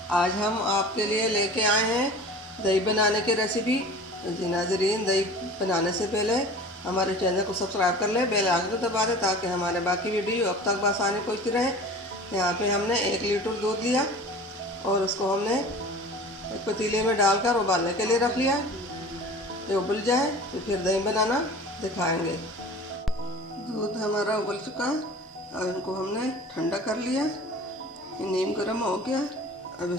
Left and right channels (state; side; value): normal; both; correlation 0.40